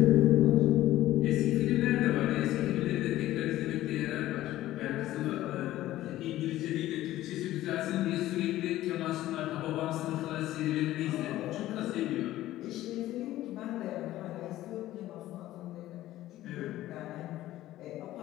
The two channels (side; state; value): right; quieter; 14.9 dB